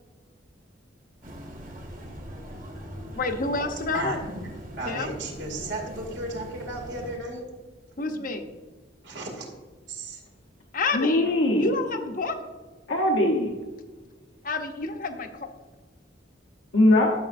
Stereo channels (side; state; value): both; normal; correlation 0.41